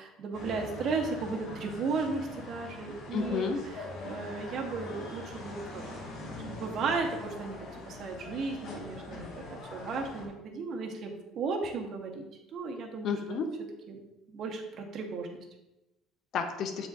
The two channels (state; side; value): normal; both; correlation 0.56